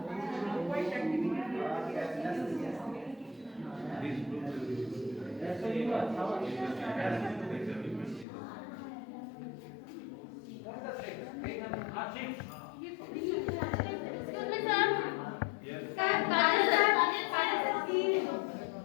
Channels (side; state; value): right; drops out; at 8.2 s